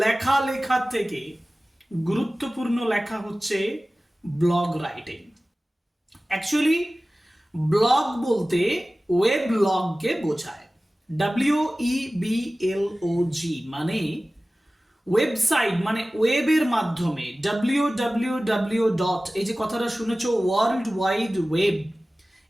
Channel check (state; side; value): normal; both; correlation 0.97